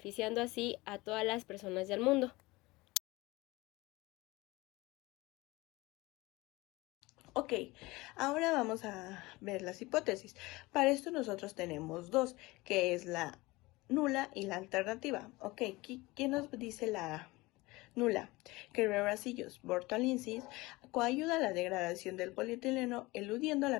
así a todas las personas del mundo. Ok, ahora vamos a ver las hipótesis. Para esto nosotros tenemos dos, que es la nula y la alternativa. Ok, ¿quién nos dice la nula? Que Bacillus burtonensis coayuda a la degradación del polietileno, eludiendo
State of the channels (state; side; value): quieter; right; 21.6 dB